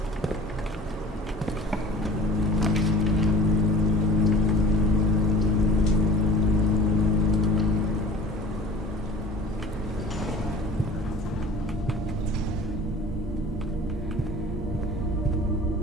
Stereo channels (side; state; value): both; normal; correlation 0.44